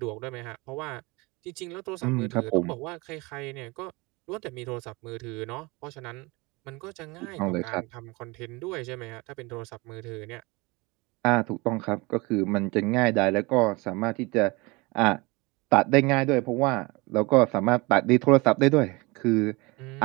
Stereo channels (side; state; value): left; quieter; 25.1 dB